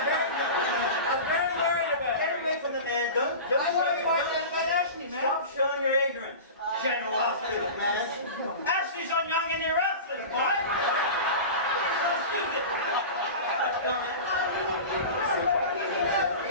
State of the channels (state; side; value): inverted; both; correlation -0.31